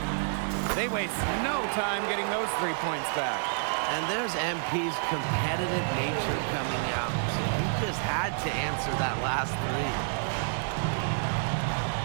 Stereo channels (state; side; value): silent; left; digital silence